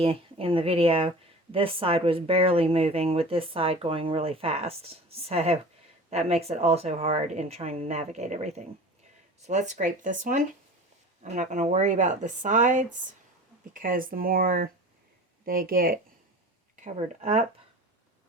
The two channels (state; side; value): normal; both; correlation 0.38